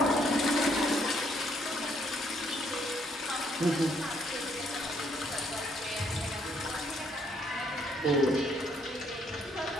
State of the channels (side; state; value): both; normal; correlation 0.69